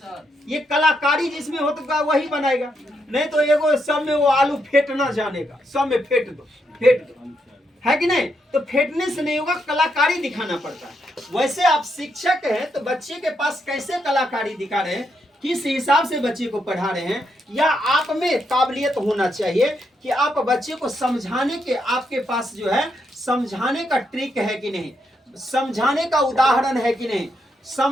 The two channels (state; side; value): normal; both; correlation 0.80